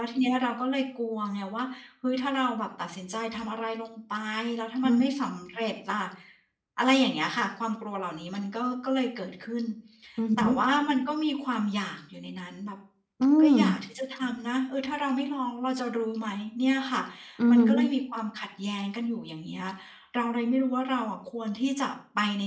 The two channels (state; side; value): identical; both; correlation 1.00